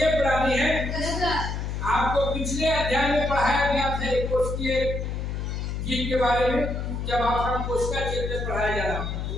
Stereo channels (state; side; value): noise; left; hum, 3 dB below the sound